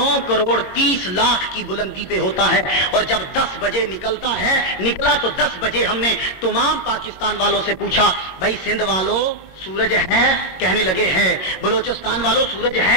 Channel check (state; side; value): late; right; 22 ms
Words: کروڑ 30 لاکھ کی بلندی پہ ہوتا ہے، اور جب 10 بجے نکلتا ہے، نکلا تو 10 بجے ہم نے تمام پاکستان والوں سے پوچھا بھائی سندھ والوں سورج ہے؟ کہنے لگے ہیں۔ بلوچستان والوں سورج